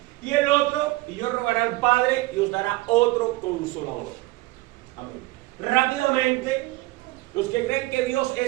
Y el otro, y yo rogaré al Padre y os dará otro consolador. Amén. Rápidamente, los que creen que Dios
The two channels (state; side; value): quieter; left; 20.1 dB